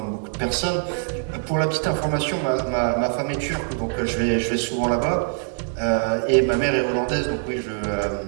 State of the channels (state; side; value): silent; left; 63 dB below the other